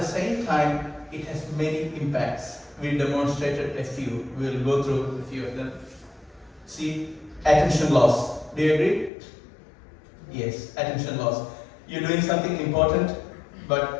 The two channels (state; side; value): drops out; right; at 9.1 s